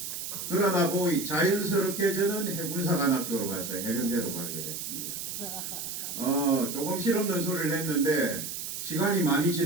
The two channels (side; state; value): right; noise; hiss, 6 dB below the sound